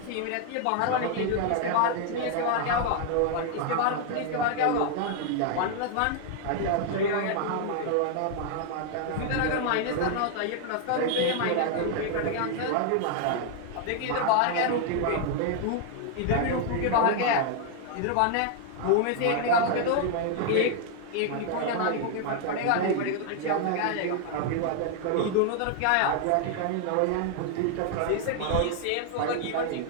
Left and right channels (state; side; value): different; both; correlation 0.00